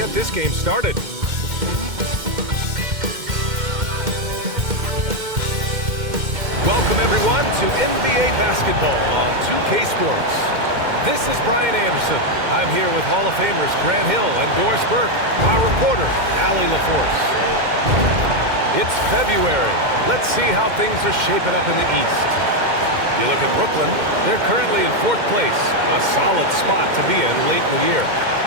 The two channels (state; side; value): late; left; 2.1 ms